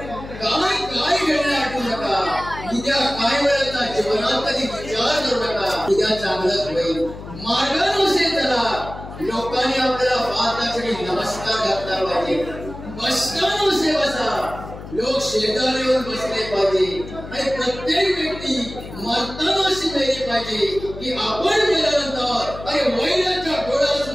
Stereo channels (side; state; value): left; noise; hum, 13 dB below the sound